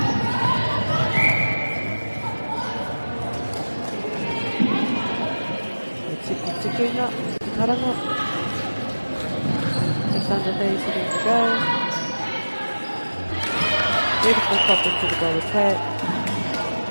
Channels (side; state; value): both; inverted; correlation -1.00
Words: Tiki ngā, karanga. Just under 30 seconds to go. Beautiful pop into the goal attack.